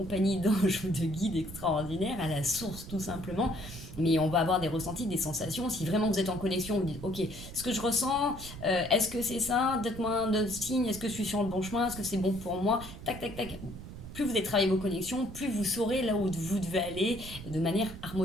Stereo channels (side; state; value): right; noise; rumble, 12 dB below the sound